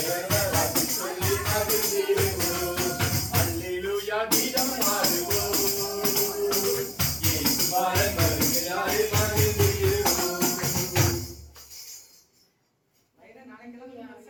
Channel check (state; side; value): identical; both; correlation 1.00